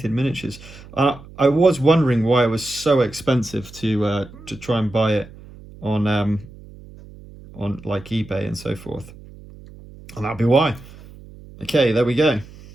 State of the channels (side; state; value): right; noise; hum, 19 dB below the sound